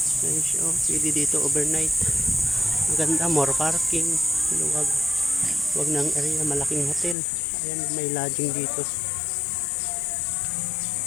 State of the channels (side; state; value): right; drops out; at 7.2 s